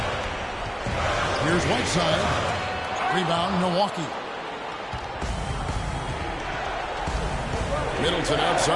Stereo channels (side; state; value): both; identical; correlation 1.00